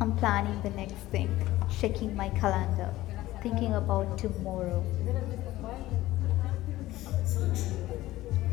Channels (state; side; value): quieter; right; 16.4 dB